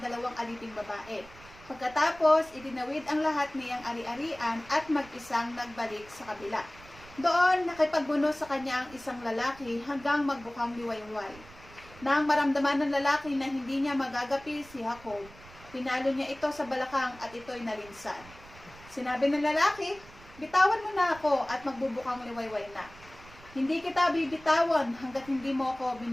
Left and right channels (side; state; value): right; noise; rumble, 21 dB below the sound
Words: aliping babae. Pagkatapos, itinawid ang lahat niyang ari-arian at mag-isang nagbalik sa kabila. Doon, nakipagbuno sa kanya ang isang lalaki hanggang magbukang liwayway. Nang maramdaman ng lalaki na hindi niya magagapi si Jacob, pinalo niya ito sa balakang at ito'y nalinsan. Sinabi ng lalaki, "Bitawan mo na ako at magbubukang liwayway na. Hindi kita bibitawan hanggat hindi mo ako